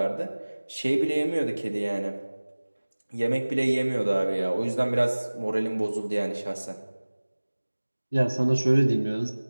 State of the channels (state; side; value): inverted; both; correlation -1.00